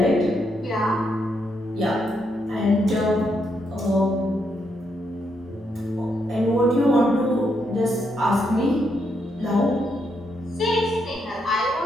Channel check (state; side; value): noise; left; hum, 29 dB below the sound